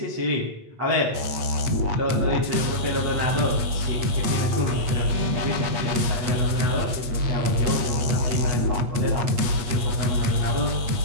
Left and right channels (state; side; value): late; left; 8.5 ms